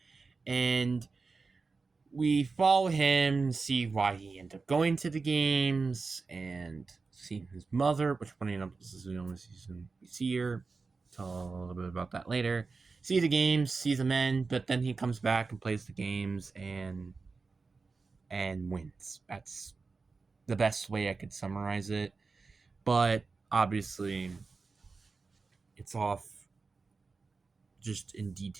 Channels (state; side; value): quieter; left; 4.3 dB